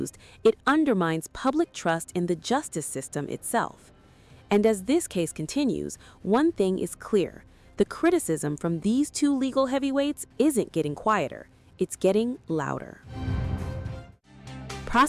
it undermines public trust in the justice system itself. And as this case continues, one thing is clear. The criticism from these two legal heavyweights isn't getting quieter, it's getting louder.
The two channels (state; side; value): identical; both; correlation 1.00